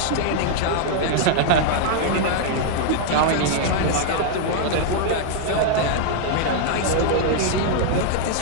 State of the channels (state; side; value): different; both; correlation -0.01